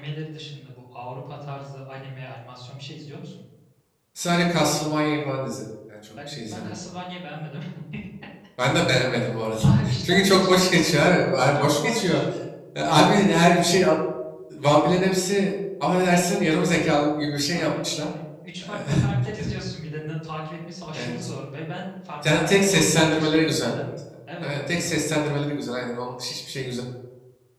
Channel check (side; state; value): both; identical; correlation 1.00